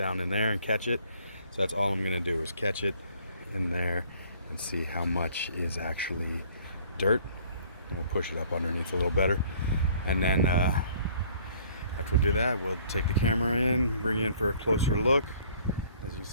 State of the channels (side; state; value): both; inverted; correlation -0.57